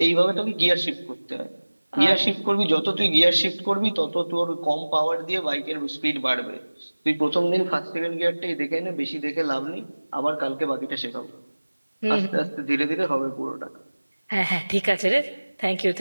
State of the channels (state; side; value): inverted; both; correlation -1.00